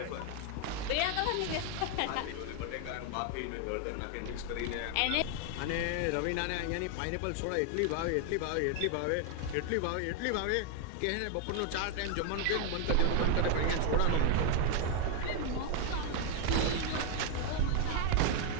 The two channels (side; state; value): both; different; correlation 0.00